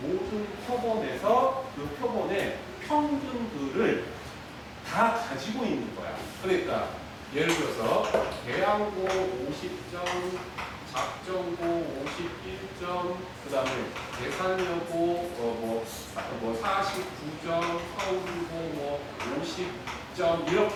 모든 표본에서 그 표본의 평균들을 다 가지고 있는 거야. 그러니까 예를 들어서 대항고 50점, 작전고 51점, 그 다음에 계산여고 49점, 서울고 50점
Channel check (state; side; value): identical; both; correlation 1.00